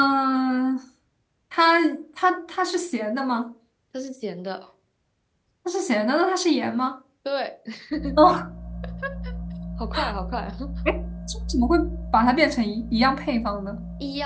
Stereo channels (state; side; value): identical; both; correlation 1.00